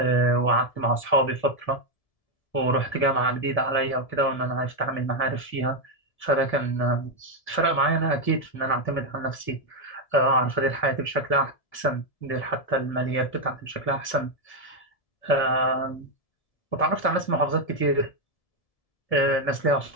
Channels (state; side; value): late; right; 1.7 ms